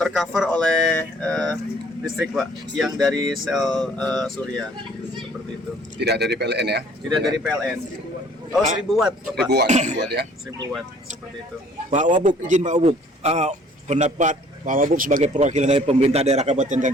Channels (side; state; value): both; normal; correlation 0.56